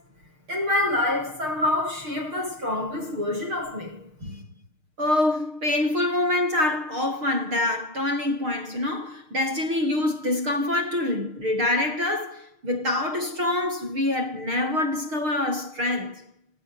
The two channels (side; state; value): left; late; 6.5 ms